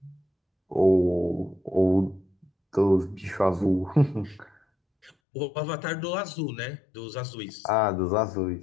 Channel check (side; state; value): right; drops out; at 5.1 s